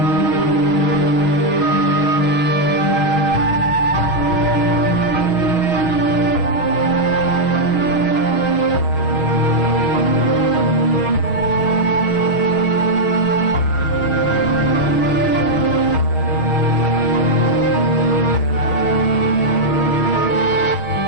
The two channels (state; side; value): late; right; 6.3 ms